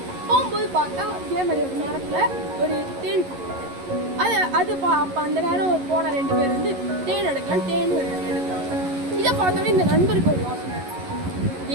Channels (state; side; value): late; left; 11 ms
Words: போகும்போது பார்த்தா இதே மாதிரி ஒரு மரத்தில் ஒரு தேன் அப்போ அந்த நேரம் போன ரெண்டு பேர் வந்து தேன் எடுக்கலாம், தேன் எடுக்கிறாங்க. இதை பார்த்தோன்னே இந்த நண்பருக்கு ஒரு யோசனை,